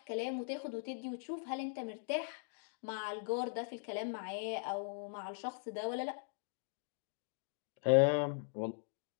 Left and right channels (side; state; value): right; silent; digital silence